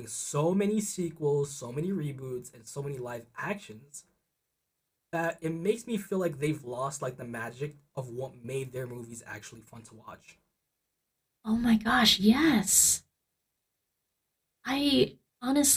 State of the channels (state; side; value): identical; both; correlation 1.00